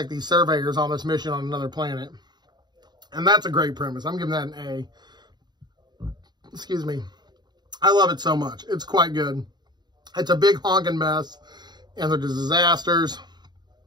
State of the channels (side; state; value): left; late; 0.21 ms